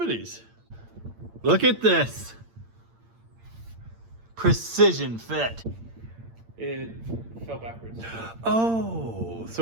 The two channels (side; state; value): left; late; 8.8 ms